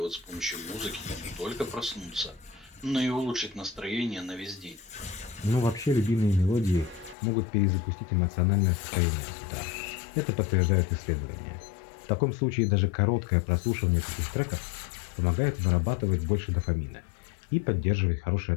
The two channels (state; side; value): drops out; right; at 7.2 s